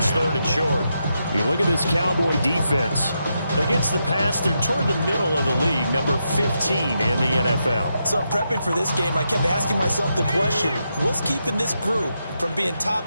3rd and short. You look at this Cowboy defense. Against the pass, they're toward the middle of the league, number 15 in the NFL. So I'm prepping for this game. I kept asking myself the question, what's keeping this group from being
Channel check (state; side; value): inverted; both; correlation -0.84